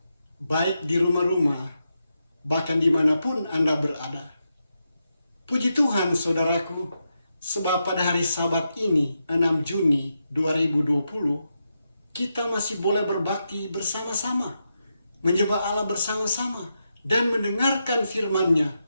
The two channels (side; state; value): both; inverted; correlation -0.86